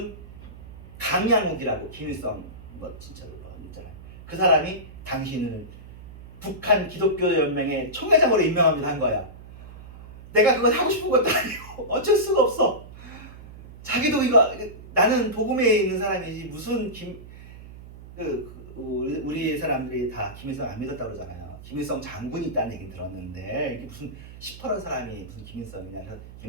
강양욱이라고 김일성 뭐 진짜로 있잖아요. 그 사람이 당신을 북한 기독교 연맹의 총회장으로 임명합니다 한 거야. 내가 그걸 하고 싶은 것도 아니고 어쩔 수가 없어. 자기도 이거 나는 복음에 있는 사람이지 무슨 우리 사람들이 다 김일성 안 믿었다고 그러잖아요. 김일성 장군이 있다는 얘기 들었는데 이게 무슨 시퍼런 사람이 무슨 김일성이냐. 그래서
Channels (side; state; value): right; noise; hum, 16 dB below the sound